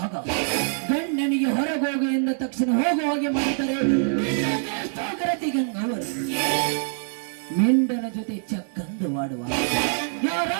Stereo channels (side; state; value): left; silent; 62 dB below the other